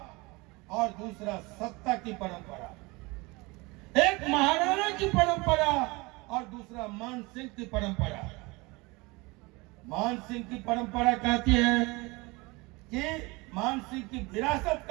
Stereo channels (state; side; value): quieter; left; 24.8 dB